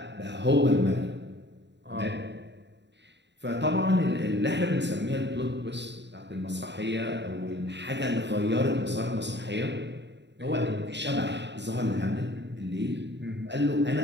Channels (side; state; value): left; late; 0.51 ms